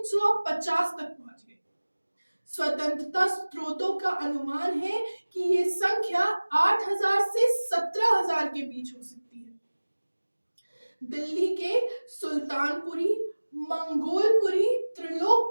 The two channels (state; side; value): inverted; both; correlation -1.00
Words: तक पहुंच गई। स्वतंत्रता स्रोतों का अनुमान है कि ये संख्या 8000 से 17000 के बीच हो सकती है। दिल्ली के सुल्तानपुरी, मंगोलपुरी,